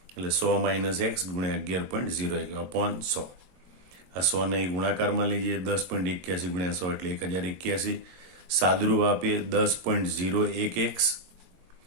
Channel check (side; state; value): left; late; 22 ms